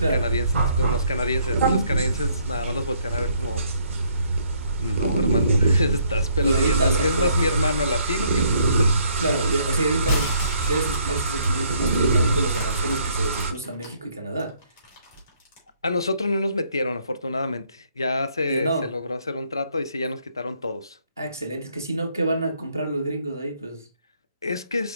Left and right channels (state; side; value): inverted; both; correlation -0.67